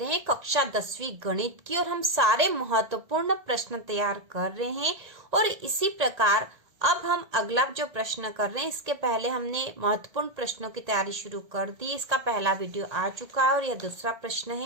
हैं कक्षा 10वीं गणित की और हम सारे महत्वपूर्ण प्रश्न तैयार कर रहे हैं। और इसी प्रकार अब हम अगला जो प्रश्न कर रहे हैं, इसके पहले हमने महत्वपूर्ण प्रश्नों की तैयारी शुरू कर दी। इसका पहला वीडियो आ चुका है और यह दूसरा प्रश्न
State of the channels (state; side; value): late; left; 1.9 ms